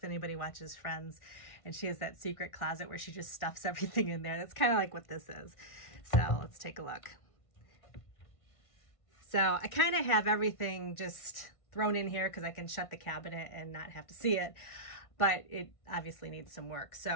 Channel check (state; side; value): late; right; 1.5 ms